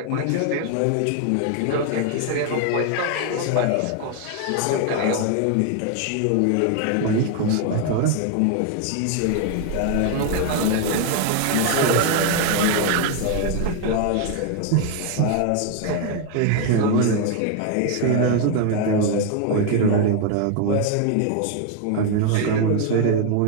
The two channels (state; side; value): different; both; correlation 0.01